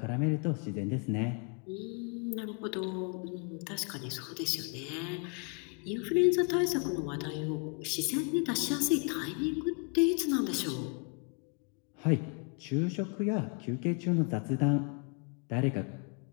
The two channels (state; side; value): quieter; right; 37.1 dB